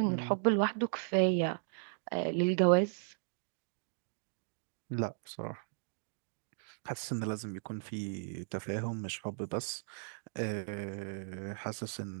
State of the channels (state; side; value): silent; left; digital silence